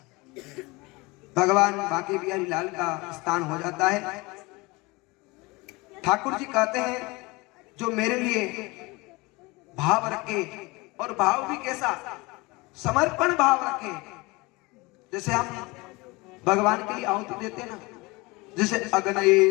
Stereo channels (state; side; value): quieter; right; 24.2 dB